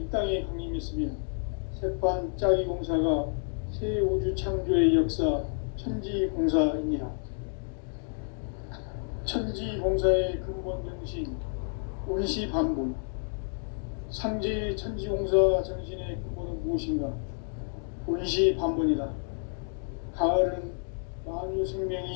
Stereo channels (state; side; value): silent; right; 58 dB below the other